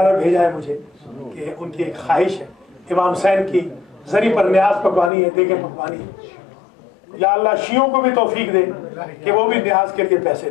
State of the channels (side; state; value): right; drops out; at 5.1 s